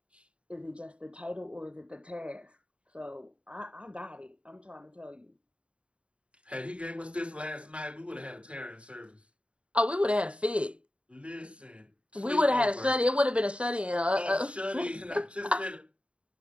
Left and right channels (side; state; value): left; late; 0.059 ms